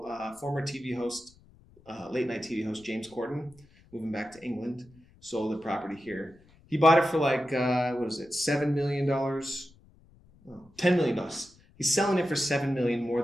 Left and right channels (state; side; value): noise; left; rumble, 27 dB below the sound